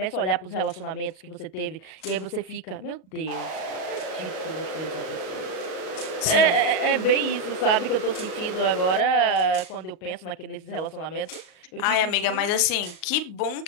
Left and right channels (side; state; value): right; late; 39 ms